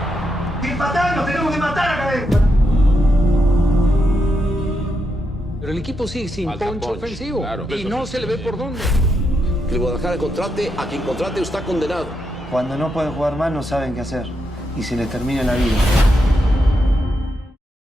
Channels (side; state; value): both; normal; correlation 0.83